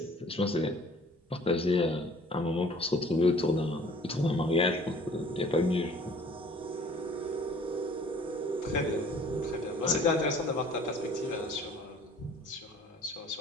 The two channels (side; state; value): both; normal; correlation 0.52